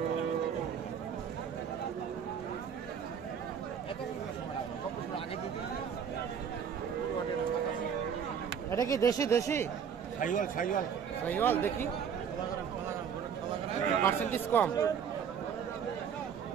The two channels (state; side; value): quieter; left; 7.6 dB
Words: এটা কি দেশি? শাহিওয়াল দেখি, পার্সেন্টেজ কম।